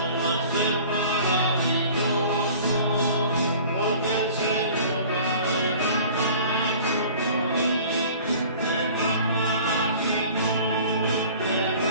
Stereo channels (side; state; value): both; inverted; correlation -0.46